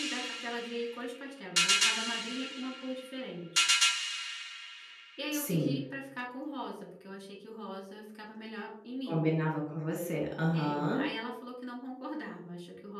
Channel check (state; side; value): identical; both; correlation 1.00